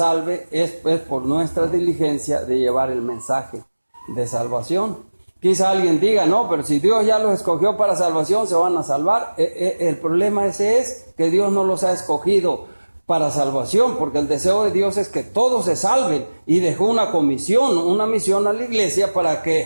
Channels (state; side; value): inverted; both; correlation -1.00